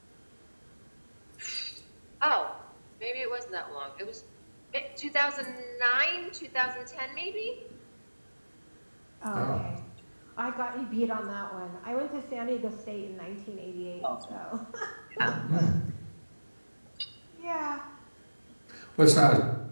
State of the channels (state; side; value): inverted; both; correlation -1.00